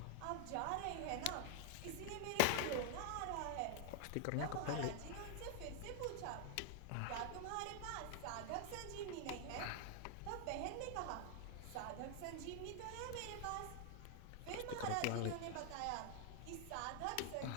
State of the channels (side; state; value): both; different; correlation 0.00